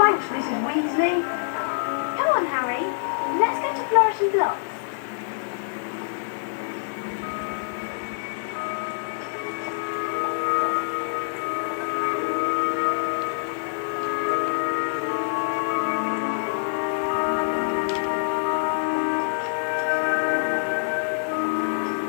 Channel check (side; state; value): right; silent; digital silence